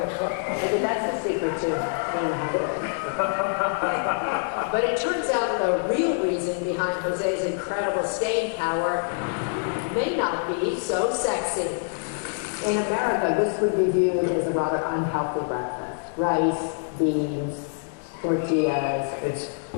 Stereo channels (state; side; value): silent; right; digital silence